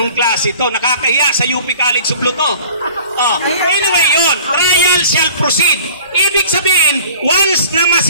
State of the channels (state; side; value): inverted; both; correlation -0.46